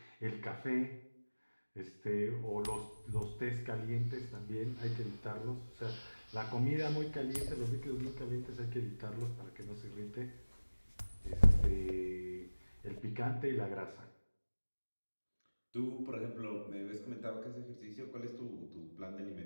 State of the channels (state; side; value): inverted; both; correlation -1.00